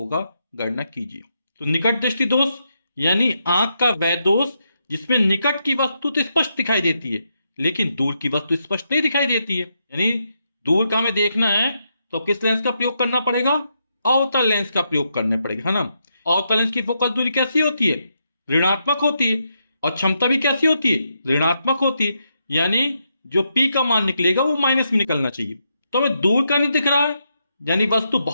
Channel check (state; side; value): inverted; both; correlation -0.81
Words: गणना कीजिए। तो निकट दृष्टि दोष यानी आंख का वह दोष जिसमें निकट की वस्तु तो स्पष्ट दिखाई देती है लेकिन दूर की वस्तु स्पष्ट नहीं दिखाई देती है। यानी दूर का हमें देखना है तो किस लेंस का प्रयोग करना पड़ेगा? अवतल लेंस का प्रयोग करना पड़ेगा, है ना। अवतल लेंस की फोकस दूरी कैसी होती है? ऋणात्मक होती है। और क्षमता भी कैसी होती है? ऋणात्मक होती है। यानी जो P का मान निकलेगा वो माइनस में निकलना चाहिए। तो हमें दूर का नहीं दिख रहा है यानी वस्तु